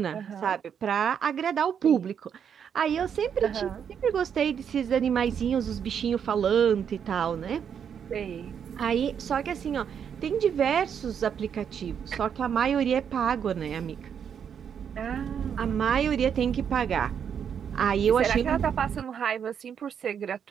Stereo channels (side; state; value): left; quieter; 7.9 dB